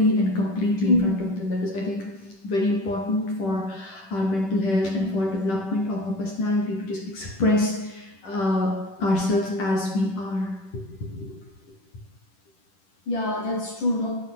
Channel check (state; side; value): late; right; 10 ms